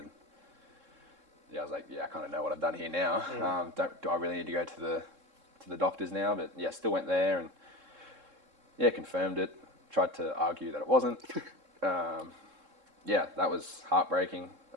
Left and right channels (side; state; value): left; late; 3.7 ms